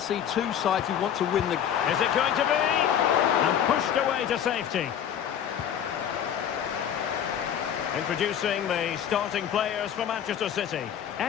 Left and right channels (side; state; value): right; quieter; 9.2 dB